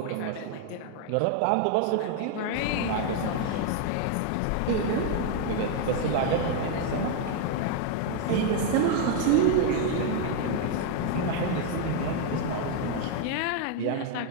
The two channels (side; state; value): both; different; correlation 0.00